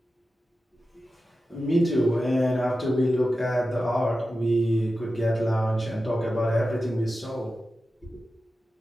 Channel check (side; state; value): both; normal; correlation 0.93